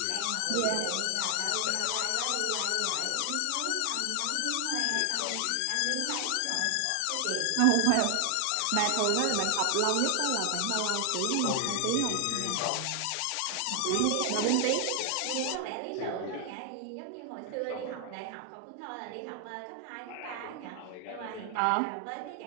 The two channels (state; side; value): different; both; correlation 0.00